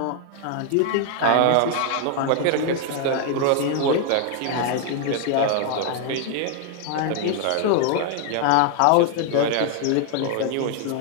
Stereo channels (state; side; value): different; both; correlation 0.00